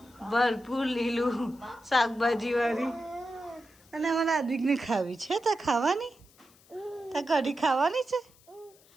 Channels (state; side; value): noise; left; hiss, 28 dB below the sound